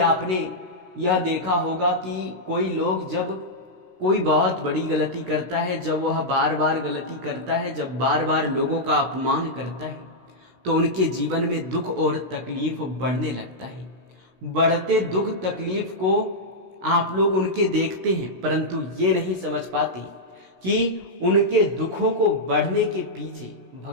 आपने यह देखा होगा कि कोई लोग जब कोई बहुत बड़ी गलती करता है, जब वह बार बार गलती करता है, जब बार बार लोगों का अपमान करता है, तो उनके जीवन में दुख और तकलीफ बढ़ने लगता है। बढ़ते दुख तकलीफ को आप लोग उनके देखते हैं, परंतु ये नहीं समझ पाते कि उनके दुखों को बढ़ने के पीछे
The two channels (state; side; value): late; left; 16 ms